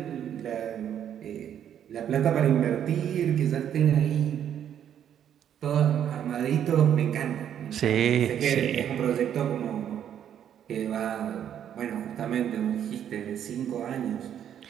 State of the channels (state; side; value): quieter; left; 9.6 dB